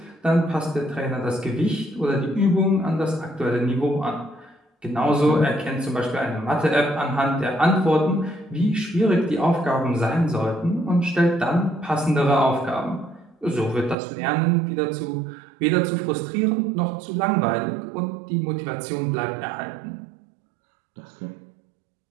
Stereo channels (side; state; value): left; drops out; at 14.0 s